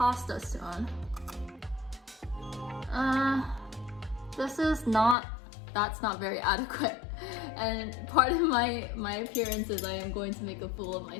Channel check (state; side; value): drops out; right; at 5.2 s